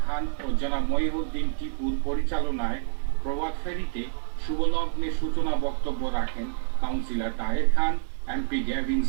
খান ও জনাব মহিউদ্দিন টিপুর পরিচালনায় প্রভাত ফেরিতে শুভলগ্নে সূচনা বক্তব্য রাখেন councillor Taher Khan, MP Gavin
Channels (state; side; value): silent; left; digital silence